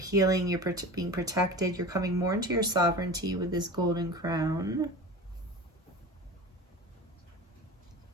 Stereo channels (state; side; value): normal; both; correlation 0.34